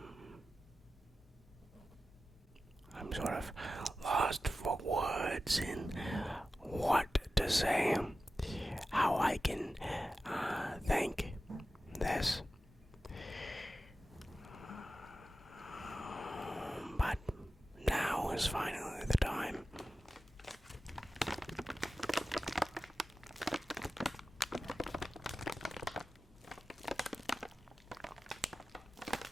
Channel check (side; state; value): both; normal; correlation 0.94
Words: I'm sort of lost for words in what to say, how I can thank this. But now is finally the time.